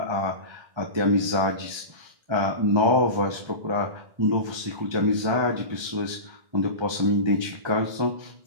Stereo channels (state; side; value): late; left; 1.3 ms